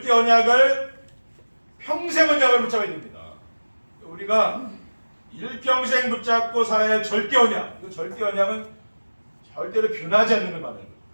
언약을 평생 언약을 붙잡아야 됩니다. 우리가 일평생 붙잡고 살아야 할 절대 언약, 이 절대 언약은 절대로 변하지 않는 걸 말하는 거예요.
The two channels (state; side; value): inverted; both; correlation -1.00